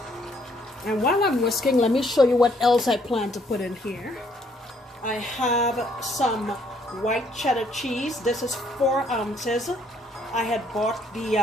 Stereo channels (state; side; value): normal; both; correlation 0.67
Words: And while I'm whisking, let me show you what else I plan to put in here. I have some white cheddar cheese. This is 4 ounces. I had bought